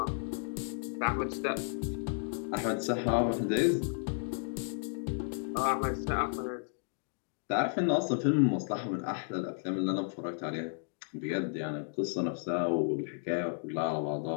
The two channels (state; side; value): silent; right; digital silence